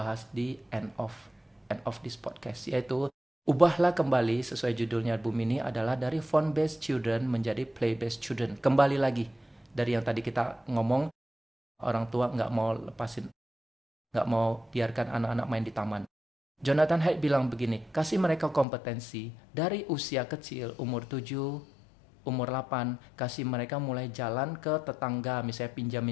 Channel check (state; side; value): drops out; right; at 18.7 s